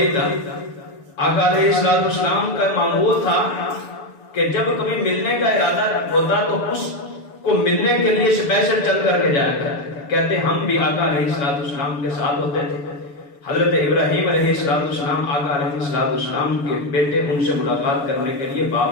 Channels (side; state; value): right; late; 6.9 ms